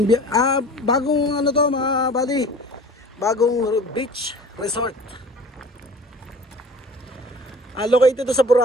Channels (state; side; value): normal; both; correlation 0.43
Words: Bagong ano to, mga buddy. Bagong beach resort. Located to sa